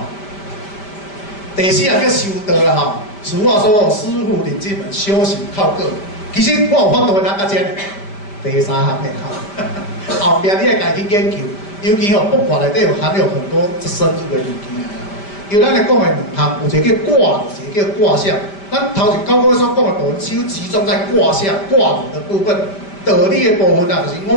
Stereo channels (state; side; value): late; right; 5.1 ms